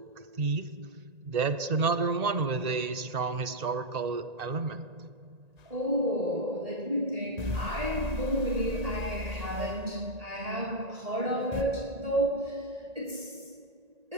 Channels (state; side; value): late; left; 1.8 ms